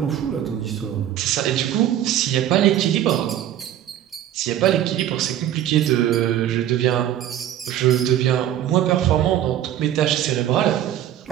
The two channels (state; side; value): quieter; left; 11.5 dB